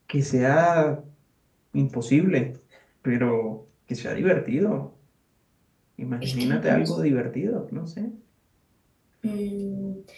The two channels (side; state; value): both; identical; correlation 1.00